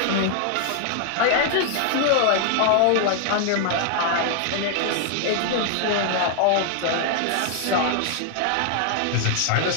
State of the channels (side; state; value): both; different; correlation 0.00